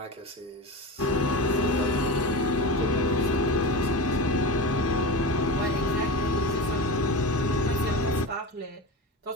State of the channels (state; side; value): normal; both; correlation 0.25